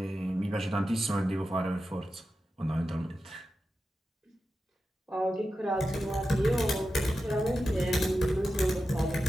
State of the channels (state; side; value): normal; both; correlation 0.91